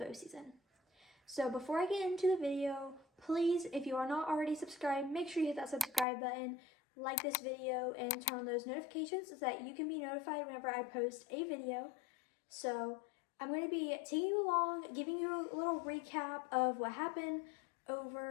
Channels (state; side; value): drops out; right; at 6.1 s